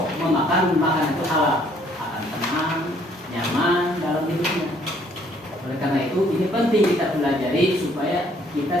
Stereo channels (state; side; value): normal; both; correlation 0.64